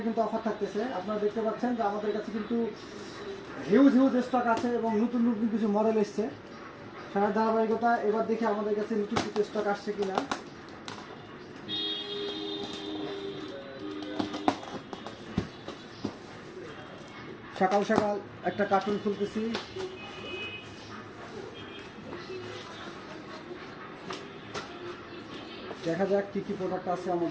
কিন্তু অফার থাকতেছে। আপনারা দেখতে পাচ্ছেন যে আমাদের কাছে কিন্তু হিউজ স্টক আছে এবং নতুন কিছু মডেল এসছে। সারা ধারাবাহিকতা এবার দেখি আমাদের কাছে নতুন কিছু স্টক আসছে কিনা। সকাল সকাল একটা কার্টুন খুলতেছি। দেখা যাক কি কি প্রোডাক্ট আছে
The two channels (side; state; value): both; identical; correlation 1.00